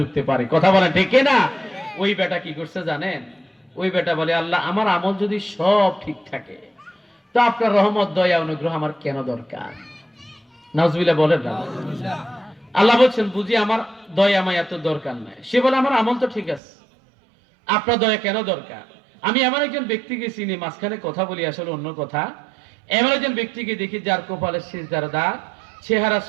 পারে। কথা বলেন ঠিক না? ওই বেটা কি করছে জানেন? ওই বেটা বলে, আল্লাহ আমার আমল যদি সব ঠিক থাকে তো আপনার রহমত দয়া অনুগ্রহ আমার কেন দরকার? নাউজুবিল্লাহ বলেন না। আল্লাহ বলছেন, বুঝি আমার দয়া মায়া তো দরকার নাই। সে বলে, আমার আমল তো ঠিক আছে, আপনার দয়া কেন দরকার? আমি এমন একজন ব্যক্তিকে চিনি, মাঝখানে কথা বলি আসলে অন্য কথা, এমন একজন ব্যক্তিকে দেখি যার কপালে সিজদার দাগ, চেহারা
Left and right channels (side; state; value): left; drops out; at 16.6 s